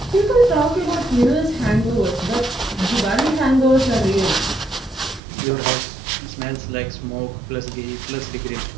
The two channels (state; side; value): drops out; left; at 5.2 s